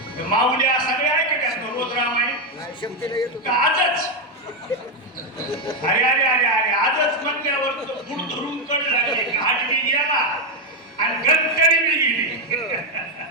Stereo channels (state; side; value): normal; both; correlation 0.04